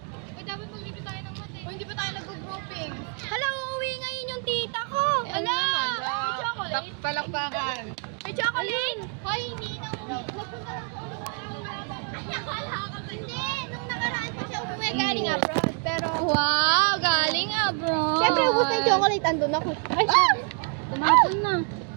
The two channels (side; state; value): left; quieter; 38.5 dB